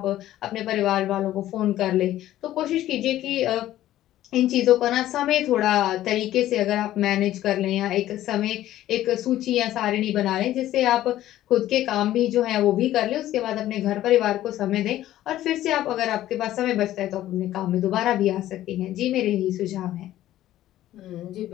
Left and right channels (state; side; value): quieter; right; 13.7 dB